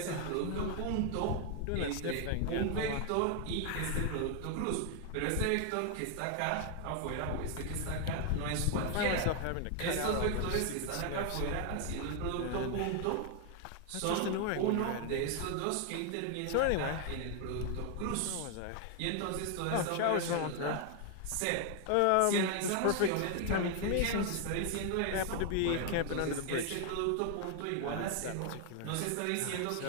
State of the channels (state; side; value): different; both; correlation 0.00